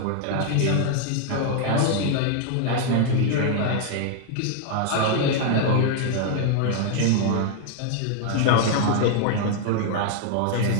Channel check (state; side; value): different; both; correlation 0.00